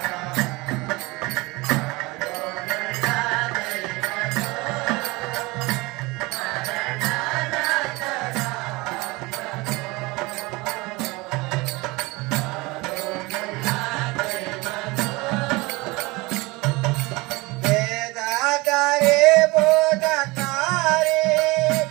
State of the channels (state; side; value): quieter; left; 23.5 dB